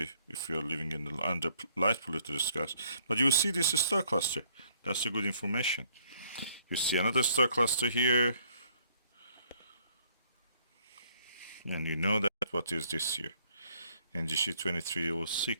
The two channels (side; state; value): both; inverted; correlation -0.65